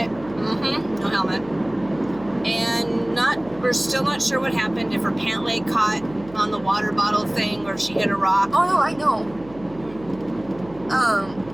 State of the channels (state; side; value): noise; right; hum, 20 dB below the sound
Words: No helmet. And we're still not sure what happened, if her pant leg caught on the water bottle thing or if she hit a rock. Oh no, I know.